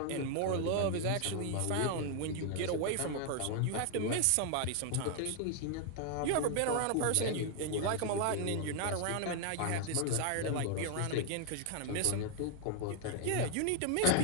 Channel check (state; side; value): different; both; correlation 0.00